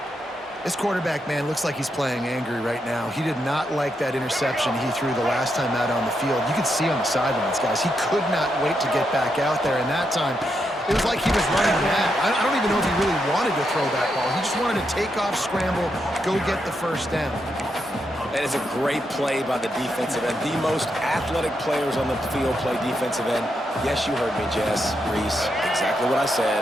This quarterback, man, looks like he's playing angry right now. He did not like that interception he threw the last time out on the field. You could see on the sidelines, guys. He could not wait to get back out there, and that time, it was like he was running mad. I don't even know if he really wanted to throw that ball. He just wanted to take off, scramble, go get the first down. That is a great play by the defensive end. The most athletic players on the field play defensive end. Yes, you heard me, Jess, Reese. Exactly what I said.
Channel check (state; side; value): normal; both; correlation 0.82